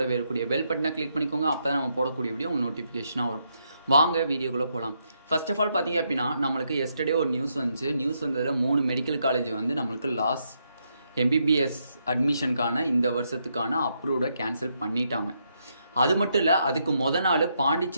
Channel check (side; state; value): both; inverted; correlation -0.78